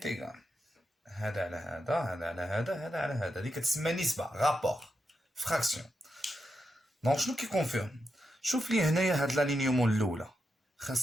هذا على هذا، هذا على هذا، هذا على هذا. هذه كتسمى نسبة، رابور، فراكسيون. دونك شنو كيكونفيرم؟ شوف لي هنايا هاد لالينيومون الاولى،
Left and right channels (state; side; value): normal; both; correlation 0.86